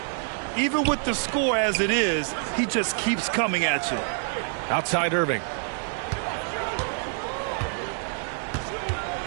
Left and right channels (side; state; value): left; silent; 59 dB below the other